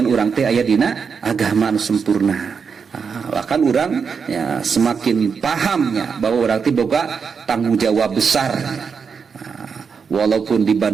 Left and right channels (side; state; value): left; quieter; 5.9 dB